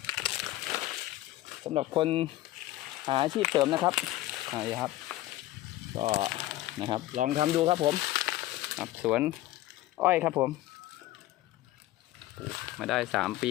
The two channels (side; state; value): right; quieter; 15.9 dB